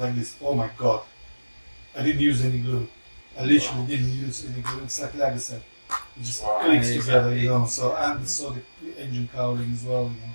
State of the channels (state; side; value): inverted; both; correlation -1.00